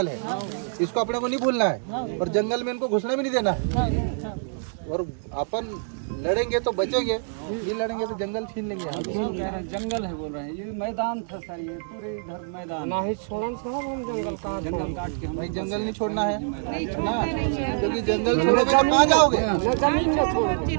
है, इसको अपने को नहीं भूलना है। और जंगल में इनको घुसने भी नहीं देना। और अपन लड़ेंगे तो बचेंगे, ये लड़ेंगे तो जंगल छीन लेंगे। जंगल है बोल रहे हैं, ये मैदान था सर, ये पूरे इधर मैदान नहीं छोड़न साहब, हम जंगल कहाँ जंगल काट के हम भाई जंगल नहीं छोड़ना है ना, क्योंकि जंगल छोड़ोगे तो कहाँ जाओगे? जमीन न छोड़,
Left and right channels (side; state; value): left; silent; digital silence